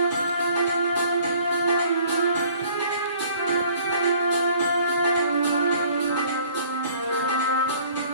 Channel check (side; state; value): both; inverted; correlation -0.53